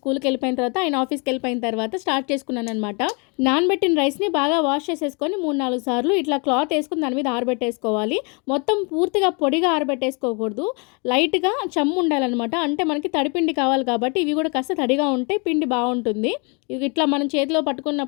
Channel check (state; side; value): quieter; right; 33.0 dB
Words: వెళ్ళిపోయిన తర్వాత, ఆయన ఆఫీస్‌కి వెళ్ళిపోయిన తర్వాత స్టార్ట్ చేసుకున్నాననమాట. నానబెట్టిన రైస్‌ని బాగా వాష్ చేసేసుకొని 3, 4 సార్లు ఇట్లా క్లాత్ వేసుకొని దాని మీద ఆరబెట్టేసుకోవాలి. మొత్తం పూర్తిగా పొడిగా ఆరబెట్టేసుకోకూడదు. లైట్‌గా చెమ్ము ఉండాలనమాట. అంటే మనకి తడిపిండి కావాలి కాబట్టి ఇవి కూడా కాస్త తడిగా ఉంటే పిండి బాగుంటుంది. ఇట్లా మనం చేతిలో